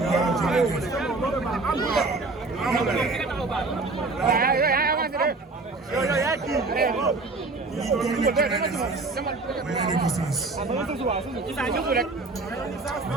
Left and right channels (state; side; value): quieter; left; 3.5 dB